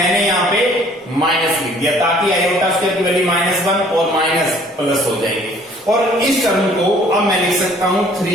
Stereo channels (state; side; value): normal; both; correlation 0.56